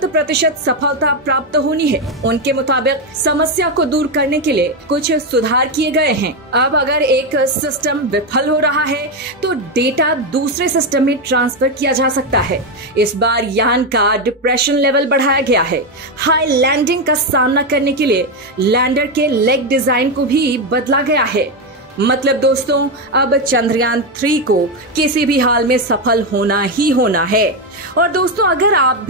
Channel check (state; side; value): normal; both; correlation 0.08